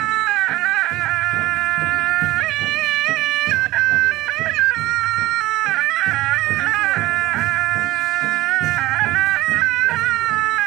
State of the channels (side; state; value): left; quieter; 17.6 dB